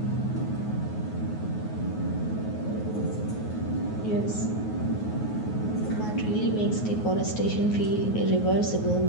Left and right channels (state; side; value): late; right; 9.4 ms